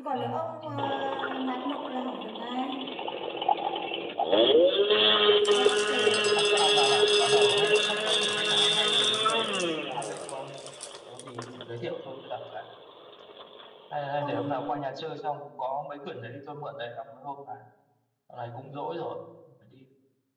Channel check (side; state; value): both; identical; correlation 1.00